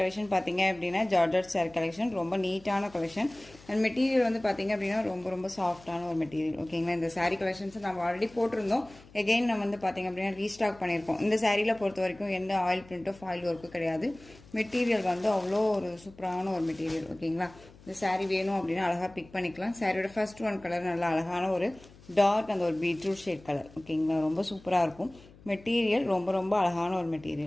பாத்தீங்க அப்படினா ஜார்ஜெட் saree கலெக்ஷன் ரொம்ப நீட்டான கலெக்ஷன் and மெட்டீரியல் வந்து பாத்தீங்க அப்படினா ரொம்ப சாஃப்ட்டான ஒரு மெட்டீரியல். ஓகேங்களா, இந்த saree கலெக்ஷன்ஸ் நம்ம ஆல்ரெடி போட்டுருந்தோம். அகைன் நம்ம வந்து பாத்தீங்க அப்படினா ரீஸ்டாக் பண்ணிருக்கோம். இந்த சாரீல பொறுத்த வரைக்கும் எந்த ஆயில் பிரிண்டோ ஃபாயில் வர்க்கோ கிடையாது. மெட்டீரியல் வந்து அவ்வளோ ஒரு சூப்பரான ஒரு மெட்டீரியல். ஓகேங்களா, இந்த saree வேணும் அப்படினா அழகா பிக் பண்ணிக்கலாம். சாரியோட ஃபர்ஸ்ட் ஒன் கலர் நல்ல அழகான ஒரு டார்க் அந்த ஒரு பீட்ரூட் ஷேட் கலர். ஓகேங்களா, ரொம்ப சூப்பரா இருக்கும். மெட்டீரியல் ரொம்ப அழகான ஒரு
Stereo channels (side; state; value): left; noise; hum, 23 dB below the sound